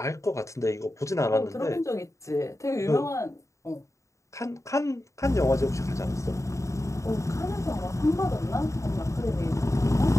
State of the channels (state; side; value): late; right; 0.15 ms